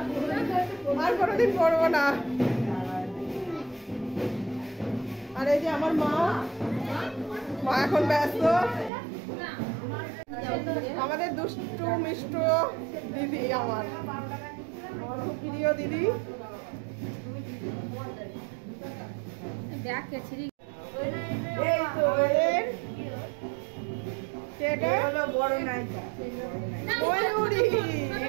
আর কোনোদিন পরবো না। আর এই যে আমার মা এখন ব্যস্ত, আমাদের দুষ্টু মিষ্টু দিদি, আমার খুব প্রিয় দিদি।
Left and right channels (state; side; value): drops out; left; at 8.9 s